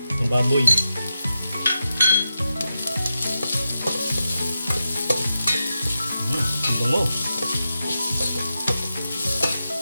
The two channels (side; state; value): both; inverted; correlation -0.89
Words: ang baboy. Ang bango.